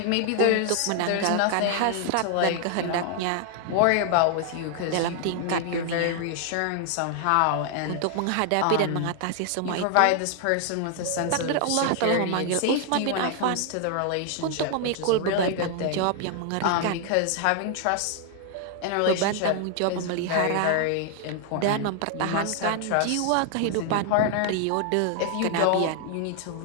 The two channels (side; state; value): both; different; correlation 0.00